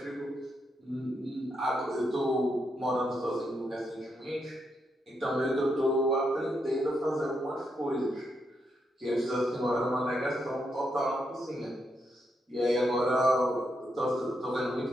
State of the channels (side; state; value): both; normal; correlation 0.81